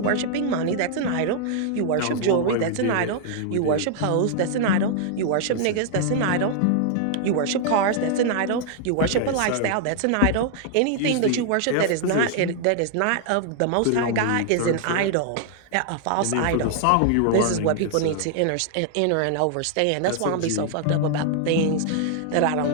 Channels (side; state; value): both; different; correlation 0.00